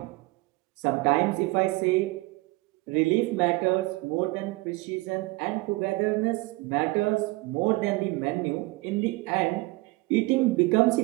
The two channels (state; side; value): quieter; left; 22.5 dB